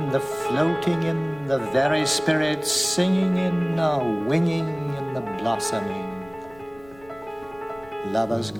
the floating in the very spirit, singing in are winging in the blossoming. Lovers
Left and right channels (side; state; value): left; noise; rumble, 25 dB below the sound